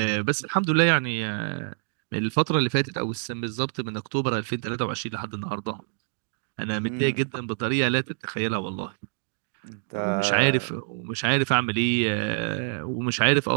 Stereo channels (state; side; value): silent; left; digital silence